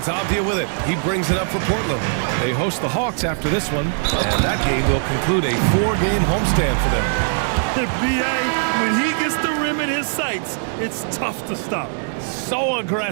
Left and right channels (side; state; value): left; silent; digital silence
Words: Avdia with it. He brings it up for Portland. They host the Hawks after this one, and that game will conclude a 4-game homestand for them. The BA, when he gets the rim in his sights, it's tough to stop. So